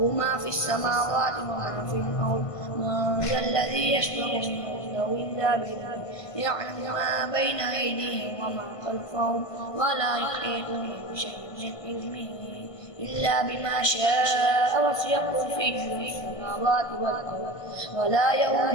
ما في السماوات وما في الأرض. من ذا الذي يشفع عنده إلا بإذنه يعلم ما بين أيديهم وما خلفهم ولا يحيطون بشيء من علمه إلا بما شاء وسع كرسيه السماوات والأرض ولا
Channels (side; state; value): right; late; 1.5 ms